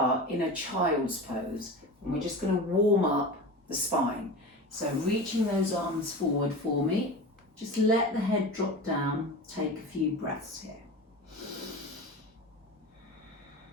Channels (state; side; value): normal; both; correlation 0.30